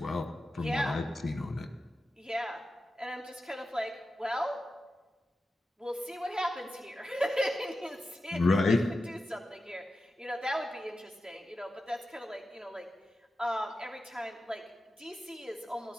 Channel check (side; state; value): both; normal; correlation 0.91